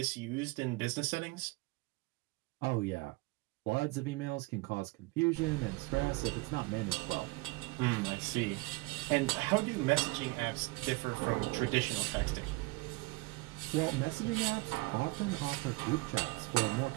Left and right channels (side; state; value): left; quieter; 23.3 dB